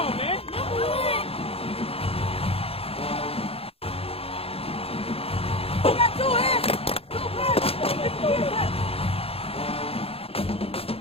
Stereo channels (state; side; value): late; right; 0.28 ms